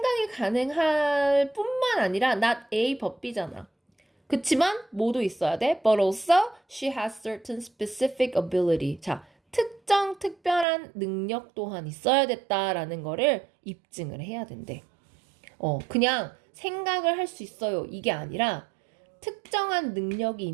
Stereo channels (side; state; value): left; drops out; at 10.7 s